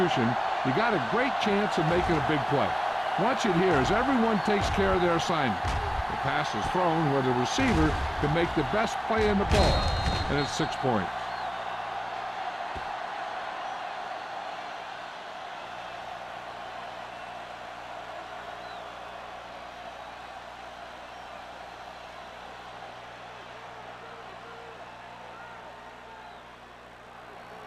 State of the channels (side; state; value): both; identical; correlation 1.00